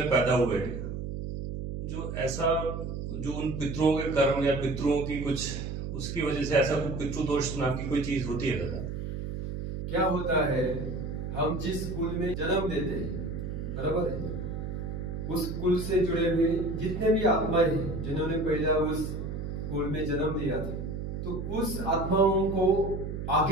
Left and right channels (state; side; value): noise; right; hum, 5 dB below the sound